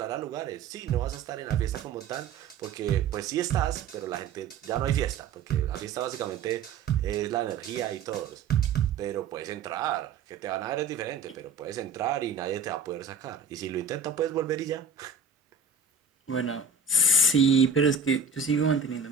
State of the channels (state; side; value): quieter; left; 4.8 dB